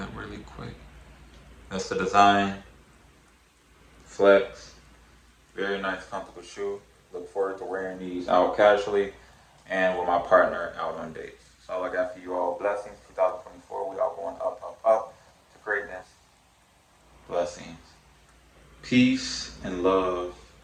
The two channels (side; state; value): both; identical; correlation 1.00